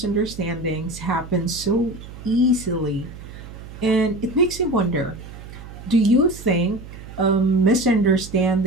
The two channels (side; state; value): right; noise; hum, 14 dB below the sound